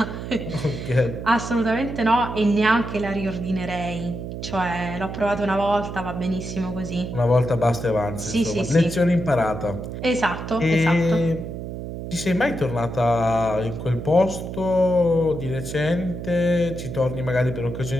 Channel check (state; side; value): noise; right; hum, 7 dB below the sound